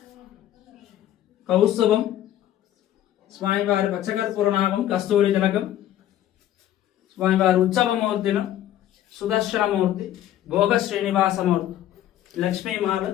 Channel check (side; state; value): right; quieter; 12.2 dB